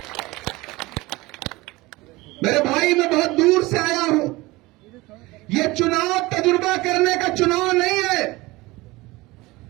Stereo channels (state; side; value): quieter; left; 21.1 dB